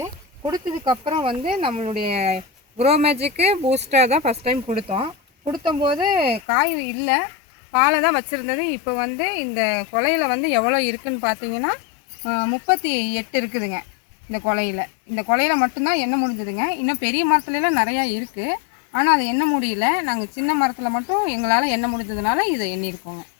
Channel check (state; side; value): drops out; right; at 6.4 s